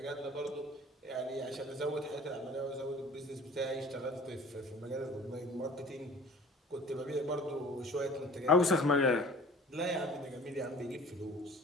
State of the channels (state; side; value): normal; both; correlation 0.46